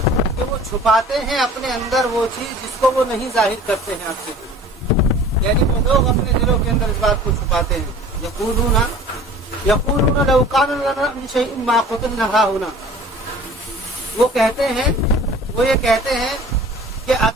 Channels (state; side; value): normal; both; correlation 0.45